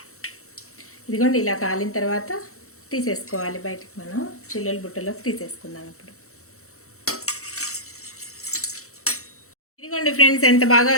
ఇదిగోండి, ఇలా కాలిన తర్వాత తీసేసుకోవాలి బయటికి. మనం చిల్లుల బుట్టలోకి తీసేసుకుందాం. ఇప్పుడు ఇదిగోండి ఫ్రెండ్స్, ఎంత బాగా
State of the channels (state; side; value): late; right; 0.64 ms